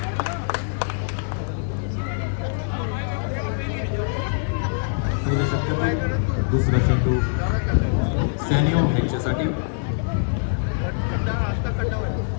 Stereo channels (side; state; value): right; silent; 63 dB below the other